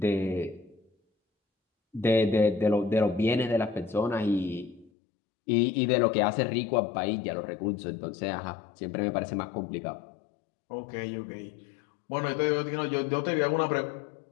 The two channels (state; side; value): drops out; right; at 4.9 s